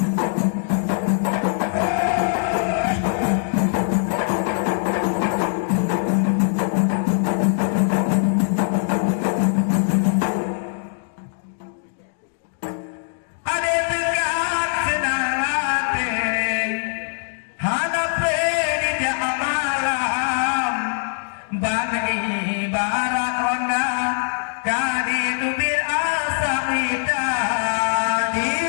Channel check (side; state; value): right; silent; digital silence